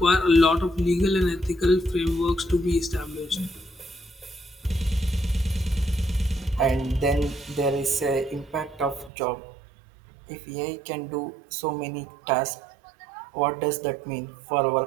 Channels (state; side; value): drops out; left; at 9.1 s